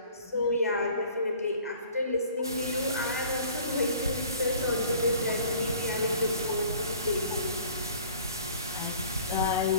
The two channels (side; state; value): both; inverted; correlation -0.50